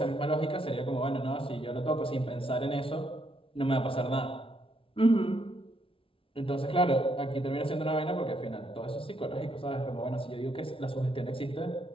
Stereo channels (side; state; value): right; late; 0.26 ms